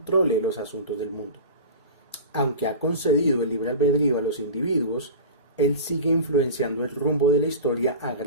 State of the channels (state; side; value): inverted; both; correlation -0.32